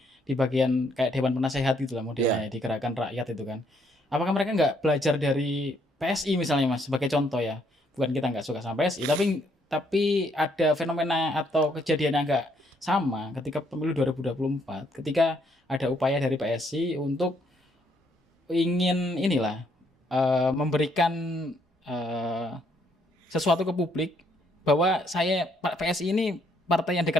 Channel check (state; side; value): normal; both; correlation 0.70